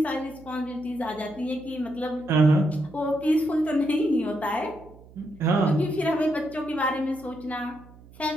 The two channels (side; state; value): right; noise; hum, 22 dB below the sound